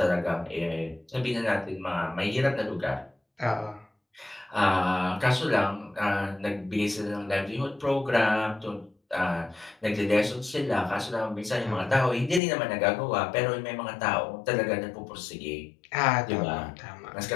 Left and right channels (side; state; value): right; drops out; at 12.4 s